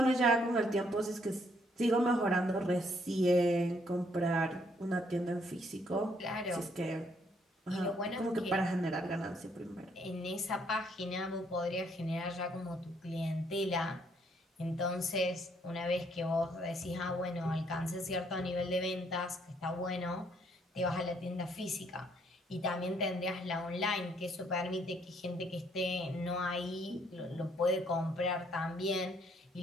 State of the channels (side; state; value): both; normal; correlation 0.68